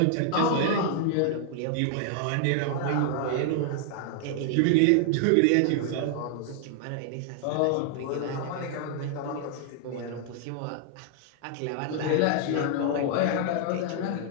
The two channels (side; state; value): both; different; correlation 0.00